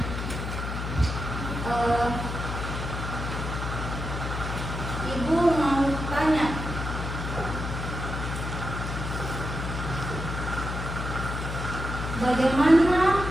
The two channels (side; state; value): left; noise; hum, 5 dB below the sound